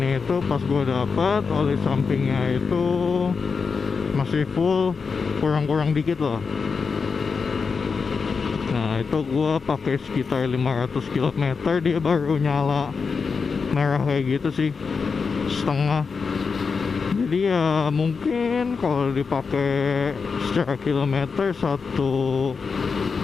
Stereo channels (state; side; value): quieter; right; 5.2 dB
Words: itu pas gue dapat oli sampingnya itu masih full, kurang-kurang dikit lah. Nah itu gue pakai sekitar 500 km dia baru nyala merah kayak gitu sih, setengah. Jadi ya mungkin kalau dipakai secara kilometer, satu